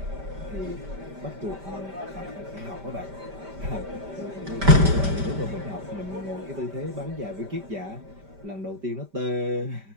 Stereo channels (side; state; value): left; late; 5.1 ms